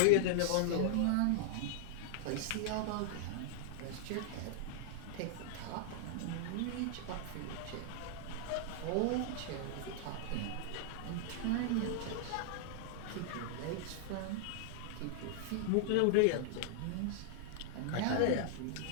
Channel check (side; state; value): both; different; correlation -0.01